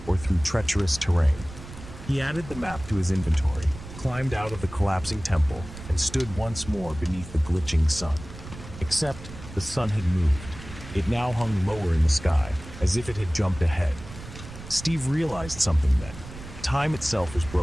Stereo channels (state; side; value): noise; right; rumble, 14 dB below the sound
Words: or through treacherous terrain. He added the map to his inventory, climbed out of the collapsing temple, and stood once more beneath the glitching sun. Except the sun had moved. It now hung lower in the sky, as if it had jumped ahead. Steve realized something then. Time itself was